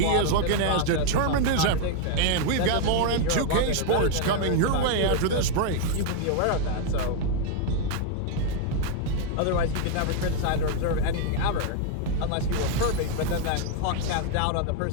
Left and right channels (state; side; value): different; both; correlation 0.00